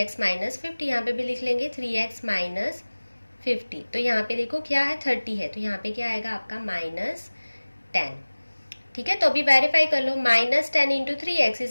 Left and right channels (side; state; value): both; inverted; correlation -1.00